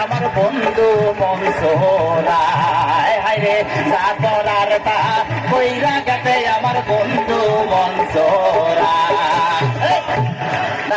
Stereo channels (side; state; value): both; identical; correlation 1.00